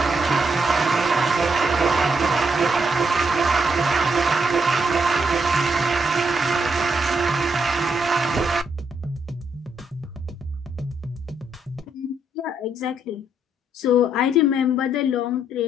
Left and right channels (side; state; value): both; normal; correlation 0.76